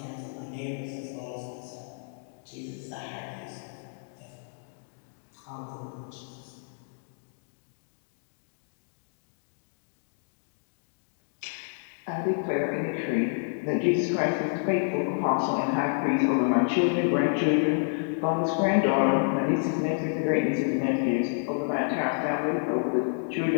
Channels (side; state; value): right; silent; digital silence